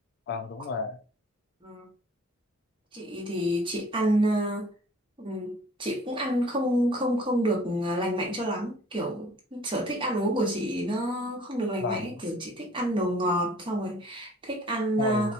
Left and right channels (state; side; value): normal; both; correlation 0.53